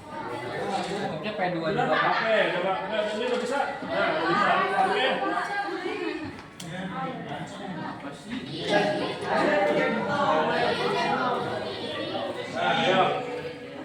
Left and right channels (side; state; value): both; identical; correlation 1.00